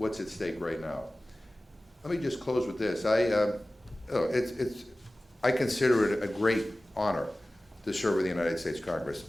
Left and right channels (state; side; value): normal; both; correlation 0.97